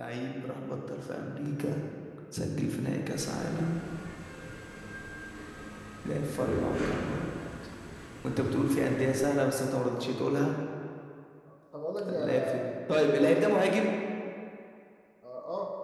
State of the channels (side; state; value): both; identical; correlation 1.00